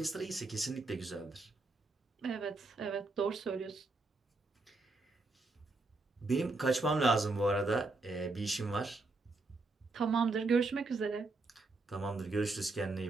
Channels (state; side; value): quieter; left; 3.3 dB